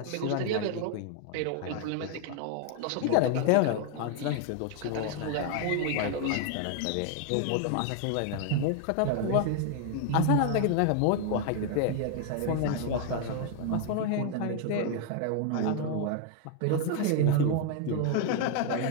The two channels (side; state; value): both; different; correlation 0.00